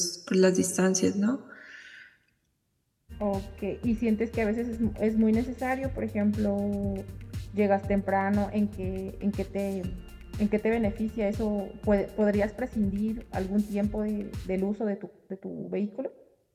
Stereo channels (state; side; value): identical; both; correlation 1.00